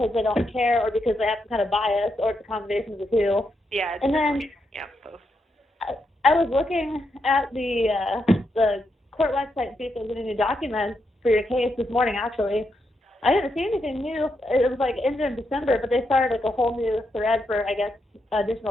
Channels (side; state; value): both; normal; correlation 0.82